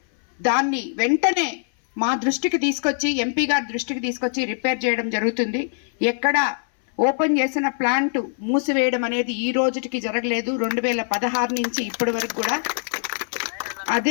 దాన్ని వెంటనే మా దృష్టికి తీసుకొచ్చి, ఎంపీ గారి దృష్టికి తీసుకొచ్చి రిపేర్ చేయడం జరుగుతుంది. ఎక్కడ ఓపెన్ చేసిన ప్లాంట్ మూసివేయడం అనేది ఈ రోజుకి జరగలేదు. 2016 నుంచి ఇప్పటి వరకు కూడా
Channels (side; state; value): right; silent; 58 dB below the other